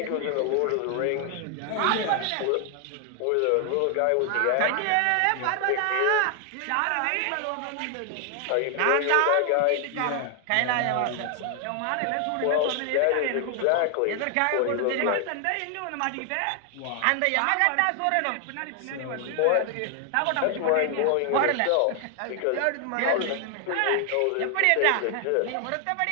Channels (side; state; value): both; different; correlation 0.00